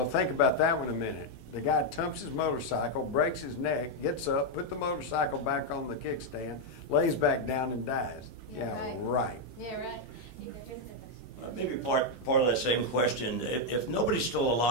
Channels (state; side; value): normal; both; correlation 0.01